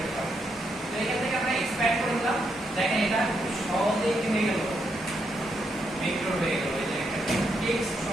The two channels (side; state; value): both; normal; correlation 0.79